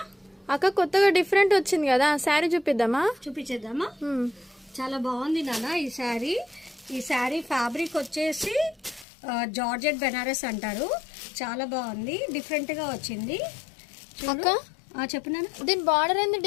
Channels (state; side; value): drops out; right; at 9.1 s